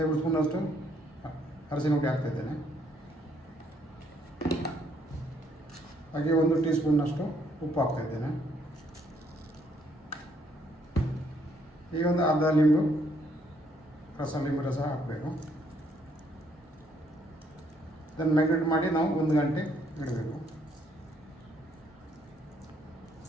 ಸ್ಪೂನಷ್ಟು ಅರಸಿನ ಹುಡಿ ಹಾಕ್ತಾಯಿದ್ದೇನೆ. ಹಾಗೆ 1 ಟೀ ಸ್ಪೂನ್ನಷ್ಟು ಉಪ್ಪು ಹಾಕ್ತಾಯಿದ್ದೇನೆ. ಈಗ ಒಂದು ಅರ್ಧ ಲಿಂಬು ರಸ ಹಾಕಬೇಕು. ಇದನ್ನು ಮ್ಯಾಗ್ನೇಟ್ ಮಾಡಿ ನಾವು 1 ಗಂಟೆ ಇಡಬೇಕು.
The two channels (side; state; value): both; normal; correlation 0.69